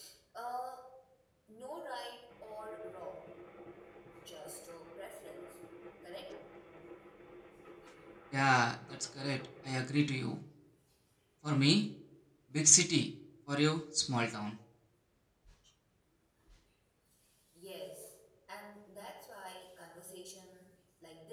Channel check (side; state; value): both; identical; correlation 1.00